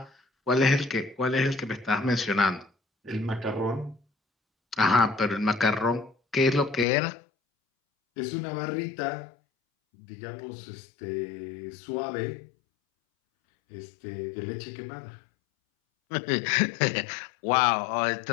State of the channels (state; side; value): drops out; right; at 6.9 s